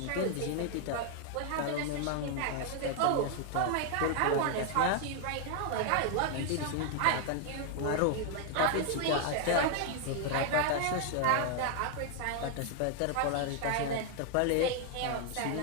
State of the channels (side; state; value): both; different; correlation 0.00